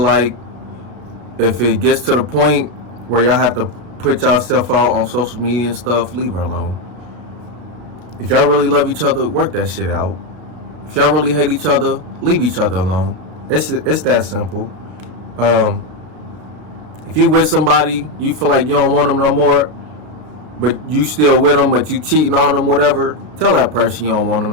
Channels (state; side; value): late; left; 33 ms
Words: if it gets to the point where y'all have to put yourself out on social media and stuff, leave her alone. If y'all really love each other, work that shit out. If y'all really hate each other, leave each other alone. It's that simple. If you with somebody, you feel like you don't want them no more, but you still with them, but you cheating on them, whatever, tell that person you don't want them